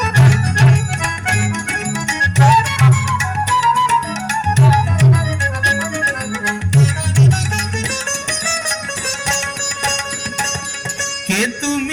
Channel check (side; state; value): both; identical; correlation 1.00